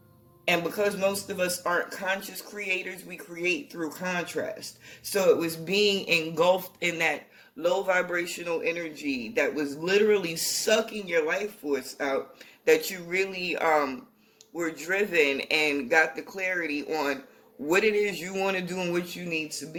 And because most of us aren't conscious creators, we create through contrast. So it was being engulfed in that low vibrational energy that was literally sucking your life force out that you really were driven and got the clarity on what it is you want to do and what you need to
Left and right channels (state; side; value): identical; both; correlation 1.00